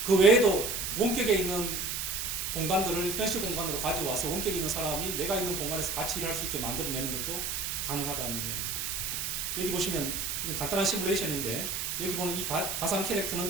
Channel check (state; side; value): noise; right; hiss, 2 dB below the sound